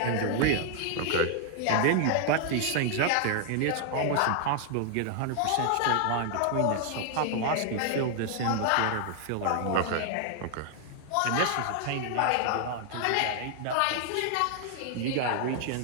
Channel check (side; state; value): both; different; correlation 0.00